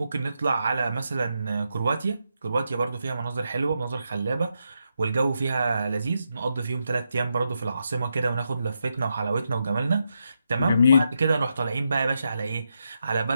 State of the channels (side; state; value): both; inverted; correlation -0.84